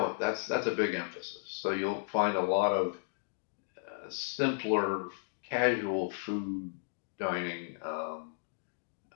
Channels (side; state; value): right; silent; digital silence